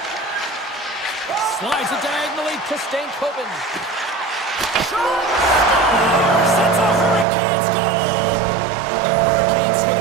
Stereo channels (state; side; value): drops out; left; at 7.2 s